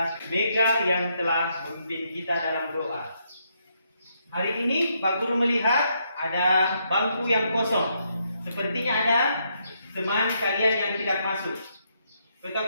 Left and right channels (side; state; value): both; inverted; correlation -0.76